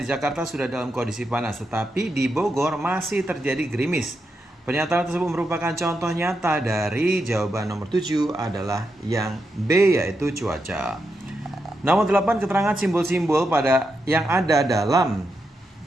Jakarta sudah dalam kondisi panas, tetapi di Bogor masih terjadi gerimis. Pernyataan tersebut merupakan contoh nyata dari jawaban nomor 7 adalah yang B, yaitu cuaca. Nomor 8, keterangan simbol-simbol pada yang ada dalam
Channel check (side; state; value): both; normal; correlation 0.85